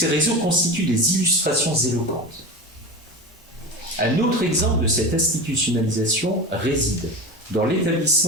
réseaux constituent des illustrations éloquentes. Un autre exemple de cette institutionnalisation réside dans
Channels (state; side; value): normal; both; correlation 0.26